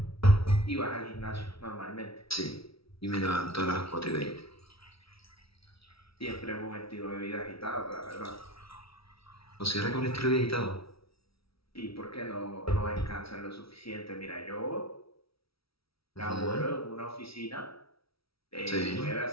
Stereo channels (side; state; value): right; late; 0.76 ms